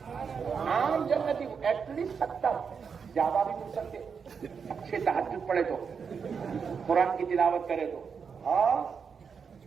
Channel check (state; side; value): quieter; left; 6.1 dB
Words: عام جنتی کو ایٹ لیسٹ 70، زیادہ بھی مل سکتے، اچھے تہجد پڑھے تو، قرآن کی تلاوت کرے تو۔ ہاں